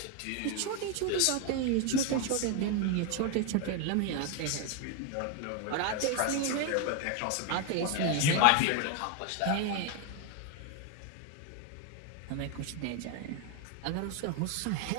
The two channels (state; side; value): different; both; correlation 0.01